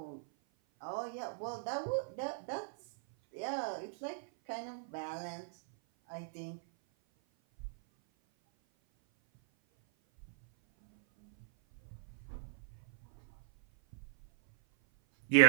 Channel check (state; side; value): silent; left; 52 dB below the other